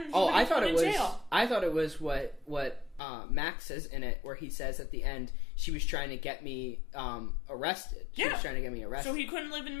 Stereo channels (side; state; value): right; drops out; at 3.0 s